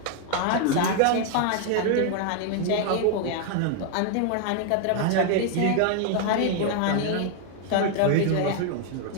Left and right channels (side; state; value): both; different; correlation 0.00